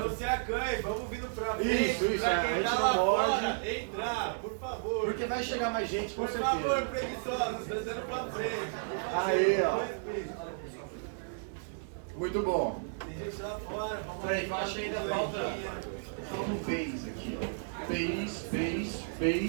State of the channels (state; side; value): silent; left; digital silence